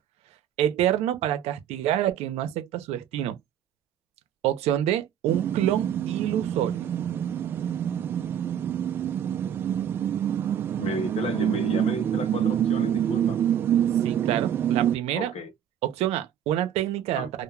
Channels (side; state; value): left; quieter; 9.4 dB